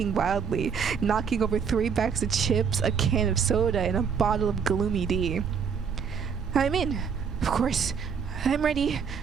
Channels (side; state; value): left; quieter; 6.6 dB